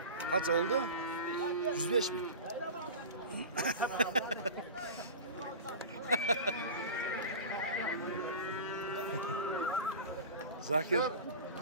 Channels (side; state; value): both; inverted; correlation -0.31